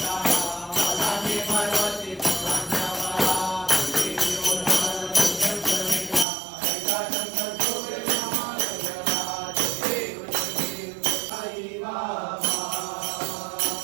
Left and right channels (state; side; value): drops out; left; at 6.2 s